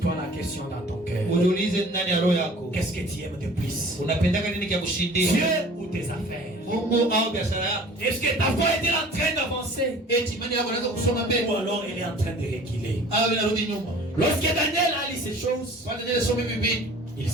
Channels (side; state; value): both; normal; correlation 0.47